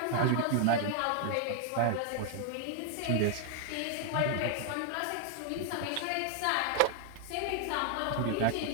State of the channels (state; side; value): different; both; correlation 0.00